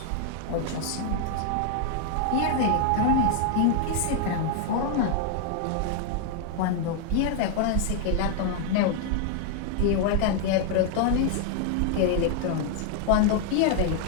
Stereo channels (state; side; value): different; both; correlation 0.00